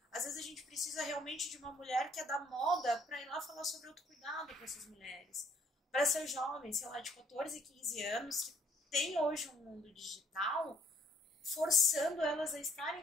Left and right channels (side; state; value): both; normal; correlation 0.63